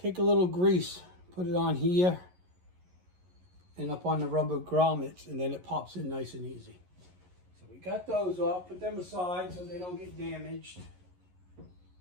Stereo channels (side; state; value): left; late; 11 ms